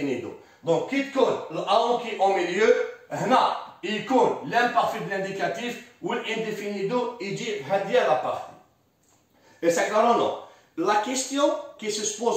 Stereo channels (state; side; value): identical; both; correlation 1.00